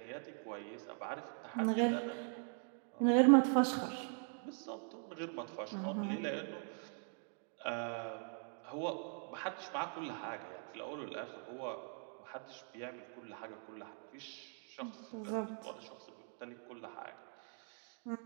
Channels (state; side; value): silent; left; 50 dB below the other